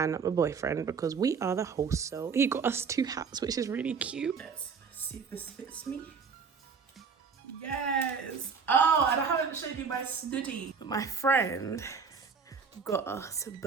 my boyfriend because we are the host, so he got us 2 hats, which is really cute. Let's see if this fits me. Yes! Oh, and I haven't showed you my snooty. But my friend got us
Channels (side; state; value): left; quieter; 5.7 dB